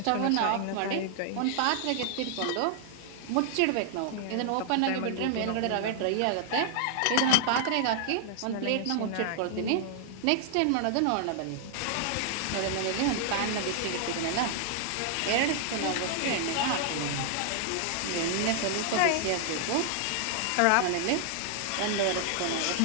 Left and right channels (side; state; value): both; different; correlation 0.00